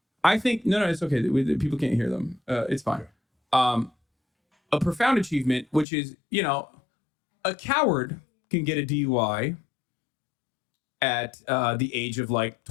I think no, it's okay. People can't hear them. It's fine. A profound achievement, which is, a coward can get a DUI at the age of like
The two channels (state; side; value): drops out; right; at 5.9 s